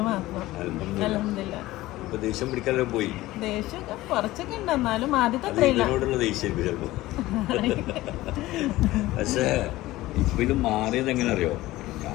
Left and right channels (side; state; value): right; quieter; 17.4 dB